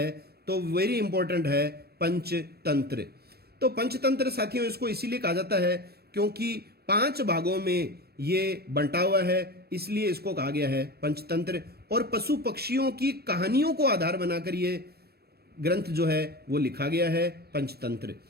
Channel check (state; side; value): late; left; 0.46 ms